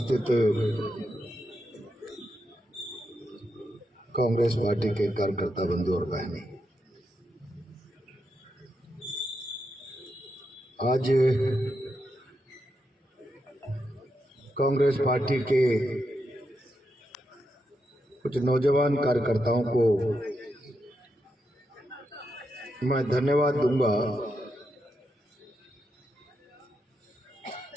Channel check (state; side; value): normal; both; correlation 0.84